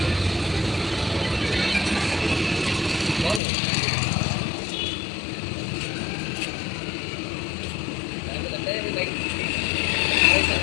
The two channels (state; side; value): drops out; right; at 3.4 s